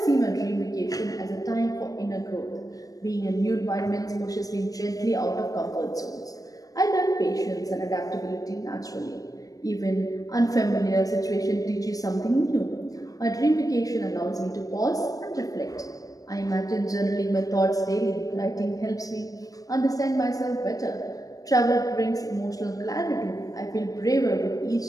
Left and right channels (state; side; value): late; right; 0.17 ms